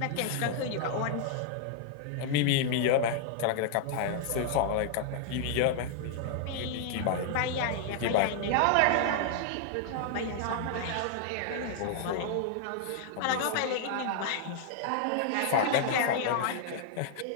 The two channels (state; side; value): different; both; correlation 0.00